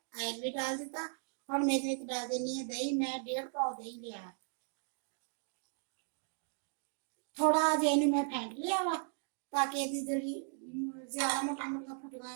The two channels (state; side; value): silent; left; 53 dB below the other